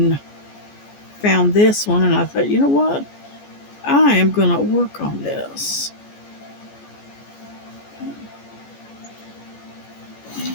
found this one, and I thought, you know what, I am going to work on this.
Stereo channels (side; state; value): right; late; 14 ms